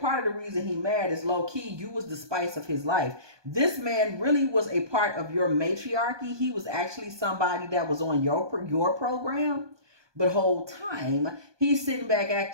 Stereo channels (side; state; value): left; late; 1.2 ms